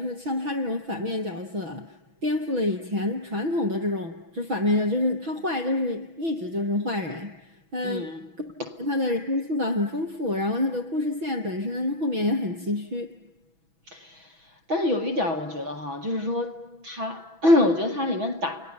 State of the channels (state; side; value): late; left; 6.1 ms